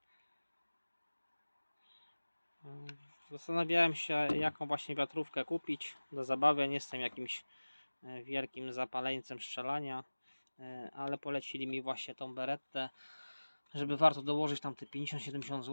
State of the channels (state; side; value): inverted; both; correlation -1.00